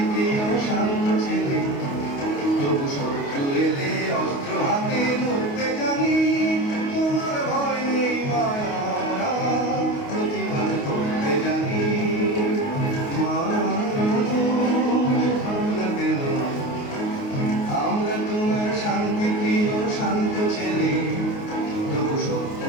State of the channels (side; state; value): right; late; 28 ms